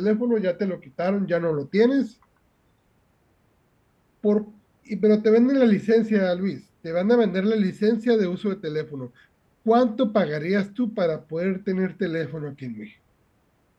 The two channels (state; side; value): identical; both; correlation 1.00